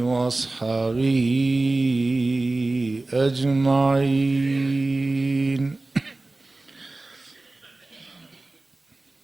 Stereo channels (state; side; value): quieter; left; 3.1 dB